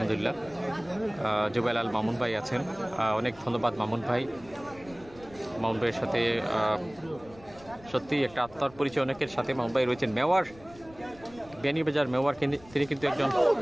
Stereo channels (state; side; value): noise; left; rumble, 22 dB below the sound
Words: জুবেল আল মামুন ভাই আছেন, অনেক ধন্যবাদ মামুন ভাই। মামুন ভাইয়ের সাথে সত্যি একটা আত্মার পরিচয় অনেকের সাথে। মামুন ভাই রয়েছেন মেওয়ার, বেনিবাজার মেওয়ার, তিনি কিন্তু একজন